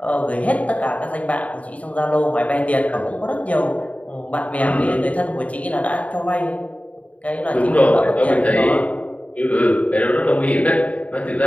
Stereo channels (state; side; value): late; right; 0.068 ms